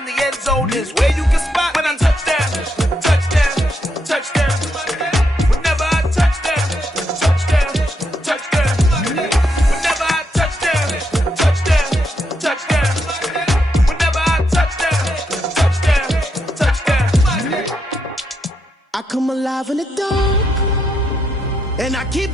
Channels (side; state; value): both; normal; correlation 0.80